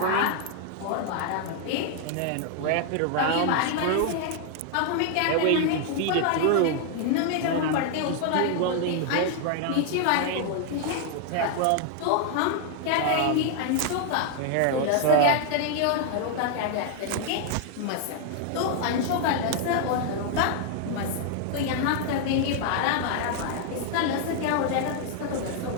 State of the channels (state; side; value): different; both; correlation 0.00